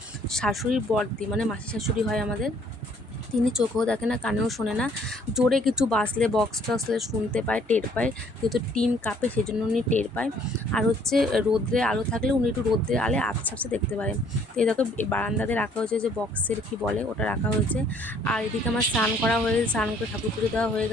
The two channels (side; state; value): both; normal; correlation 0.61